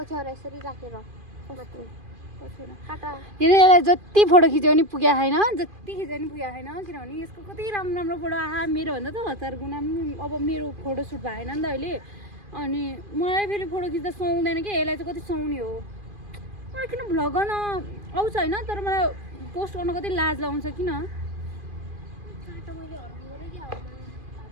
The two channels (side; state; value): left; late; 2.4 ms